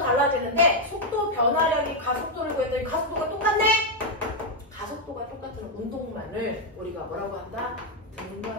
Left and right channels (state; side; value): normal; both; correlation 0.01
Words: 속도 변화량이 가속도를 구했더니 가속도가 똑같네? 가속도가 똑같은 운동만을 우리가 뭐라고 한다?